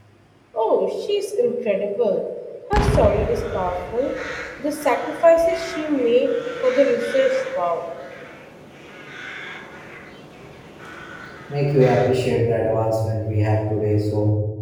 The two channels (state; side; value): identical; both; correlation 1.00